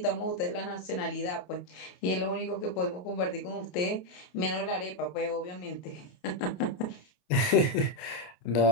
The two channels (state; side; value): late; right; 28 ms